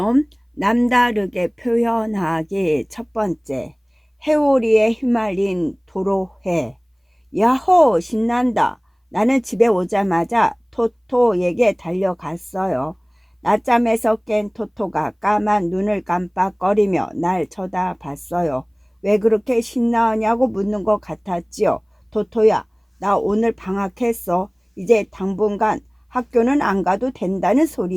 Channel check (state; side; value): identical; both; correlation 1.00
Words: 남다르게 표현하기 첫 번째. 해오리에 휘말린 도로해. 야호, 신난다. 나는 집에 오자마자 토토에게 달려갔어요. 낮잠에서 깬 토토가 까만 눈을 깜빡거리며 날 쳐다봤어요. 왜 그렇게 신나냐고 묻는 것 같았지요. 토토야, 나 오늘 방학했어. 이제 당분간 학교는 안 가도 된다는